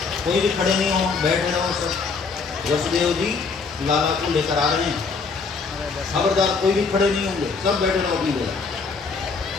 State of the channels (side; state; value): right; quieter; 4.8 dB